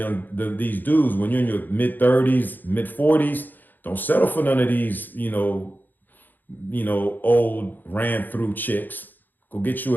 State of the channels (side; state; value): right; late; 0.088 ms